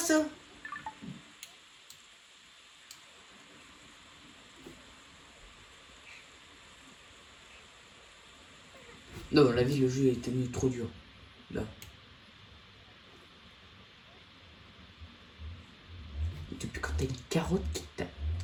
Non, la vie, le jeu est devenu trop dur. Là. Depuis quand t'as une carotte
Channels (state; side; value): identical; both; correlation 1.00